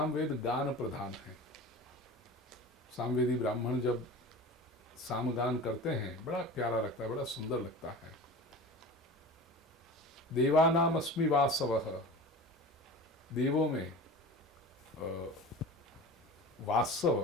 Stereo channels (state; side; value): normal; both; correlation 0.35